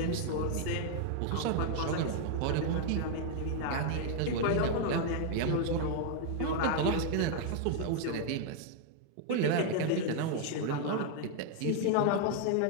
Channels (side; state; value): both; different; correlation 0.00